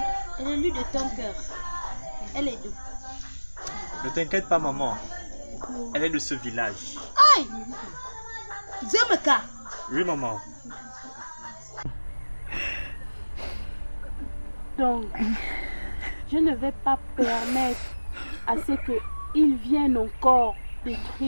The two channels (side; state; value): both; inverted; correlation -1.00